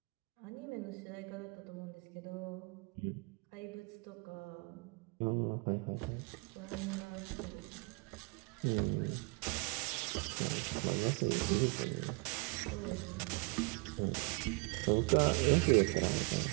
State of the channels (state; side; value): quieter; left; 29.9 dB